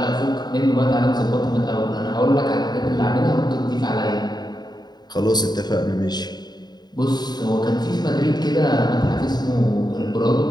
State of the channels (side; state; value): right; late; 0.20 ms